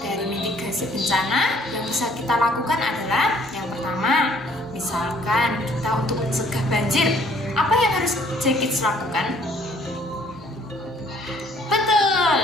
dari mitigasi bencana yang bisa kita lakukan adalah yang pertama, misalkan kita untuk mencegah banjir, apa yang harus Kids lakukan? Betul,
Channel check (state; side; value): normal; both; correlation 0.60